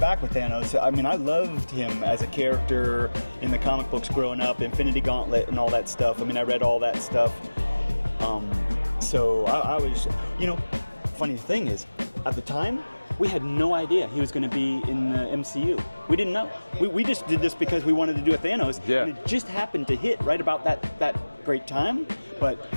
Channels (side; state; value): both; inverted; correlation -1.00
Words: with Thanos. I mean, I loved him as a character in the comic books growing up, Infinity Gauntlet and all that stuff. I mean, I read all that stuff. So I was, funny thing is, at the time, we had no idea he was going to be in the MCU. We didn't know. We just did this because we wanted to do a Thanos, and it just happened to hit right about that great time. But